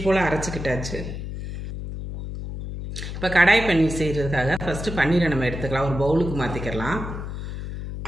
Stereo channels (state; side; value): noise; left; hum, 7 dB below the sound